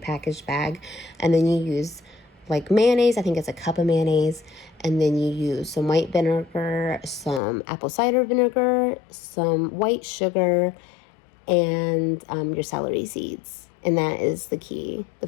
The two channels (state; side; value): drops out; right; at 7.4 s